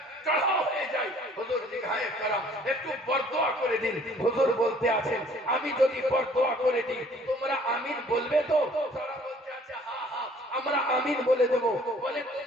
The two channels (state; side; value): normal; both; correlation 0.57